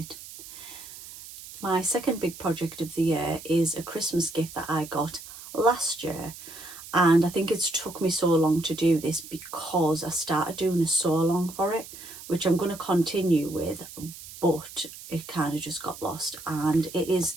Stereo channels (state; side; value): noise; right; hiss, 15 dB below the sound